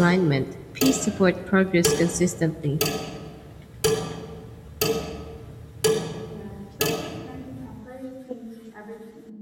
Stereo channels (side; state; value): both; identical; correlation 1.00